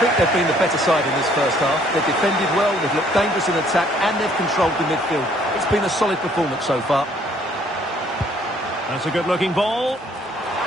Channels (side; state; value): both; normal; correlation 0.62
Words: they've been the better side in this first half. They've defended well, they've looked dangerous in attack, and they've controlled the midfield. It's been a solid performance so far. That's a good-looking ball.